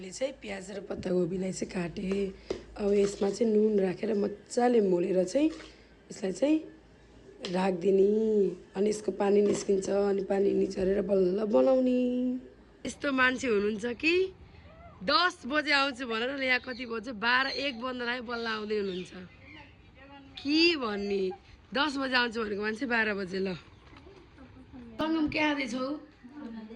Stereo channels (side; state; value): both; identical; correlation 1.00